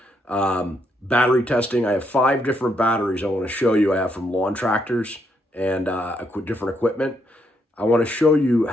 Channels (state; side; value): normal; both; correlation 0.76